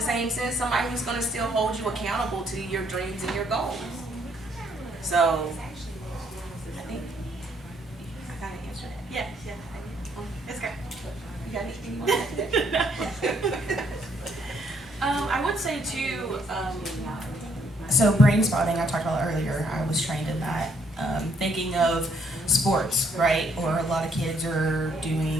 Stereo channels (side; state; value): both; normal; correlation 0.69